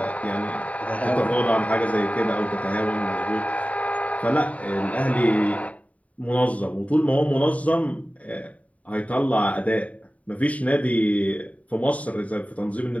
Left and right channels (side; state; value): right; late; 0.068 ms